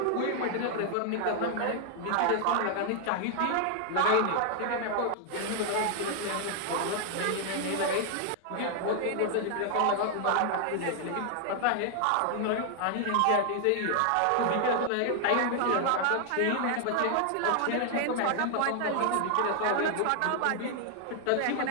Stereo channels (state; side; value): different; both; correlation 0.00